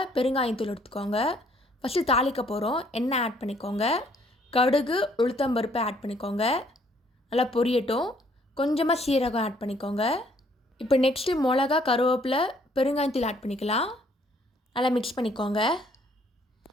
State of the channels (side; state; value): both; normal; correlation 0.64